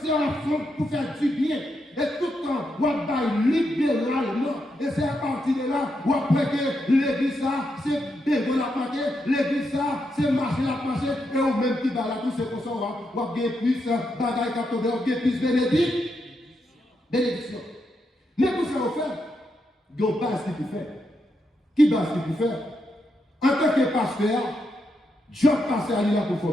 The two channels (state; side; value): normal; both; correlation 0.82